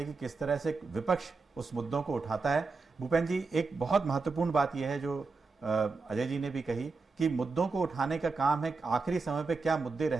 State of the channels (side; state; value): left; quieter; 4.2 dB